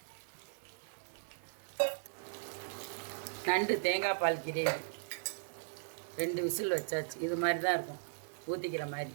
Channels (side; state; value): left; silent; 53 dB below the other